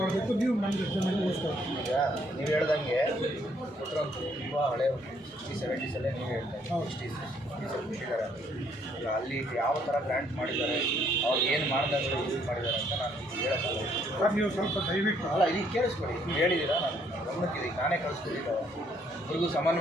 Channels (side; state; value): both; normal; correlation 0.67